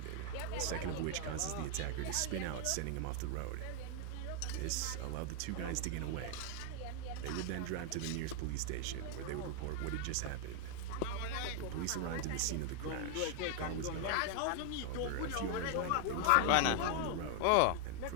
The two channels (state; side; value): different; both; correlation 0.00